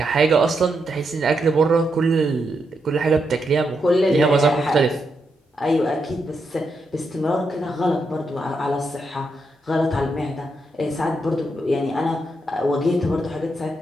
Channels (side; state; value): both; normal; correlation 0.82